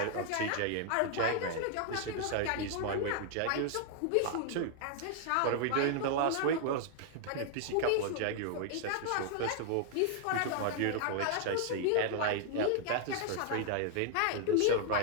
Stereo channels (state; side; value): different; both; correlation 0.00